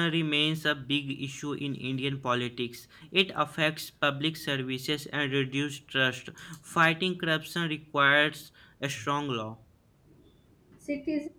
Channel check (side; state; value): both; identical; correlation 1.00